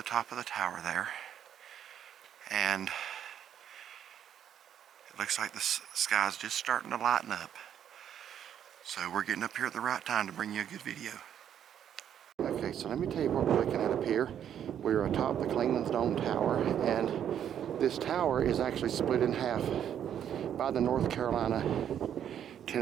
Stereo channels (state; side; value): quieter; left; 9.6 dB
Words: top of the tower there, and it looks like the sky's just starting to lighten up, so we're getting up here at the right time to bring you a good video. Okay, so let me tell you what we're looking at up here. We're atop the Clingmans Dome tower, and this tower is actually split in half by the North